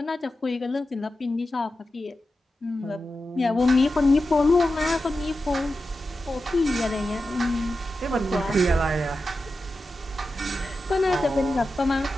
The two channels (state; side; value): normal; both; correlation 0.91